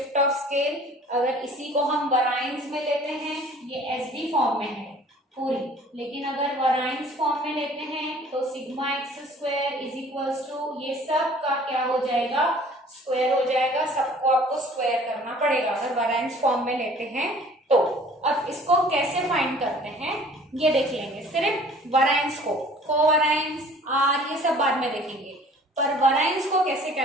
of scale. अगर इसी को हम वराइंस में लेते हैं, ये एच डी फॉर्म में है पूरी, लेकिन अगर वराइंस फॉर्म में लेते हैं तो sigma X square is equals to, ये सब का क्या हो जाएगा, स्क्वायर हो जाएगा। सबको आपको स्क्वायर करना पड़ेगा अगर वराइंस फॉर्म में लेते हैं तो। अब इसको कैसे फाइंड करते हैं ये देख लेंगे। सिर्फ वराइंस को, कोवराइंस, आर, ये सब बाद में देखेंगे, पर वराइंस को कैसे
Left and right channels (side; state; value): both; normal; correlation 0.51